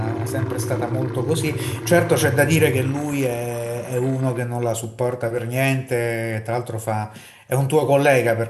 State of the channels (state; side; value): identical; both; correlation 1.00